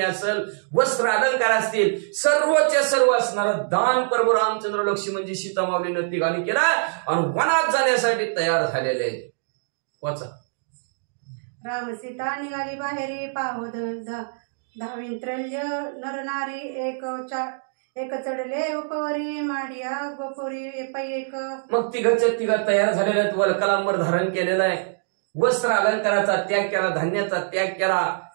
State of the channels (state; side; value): silent; left; digital silence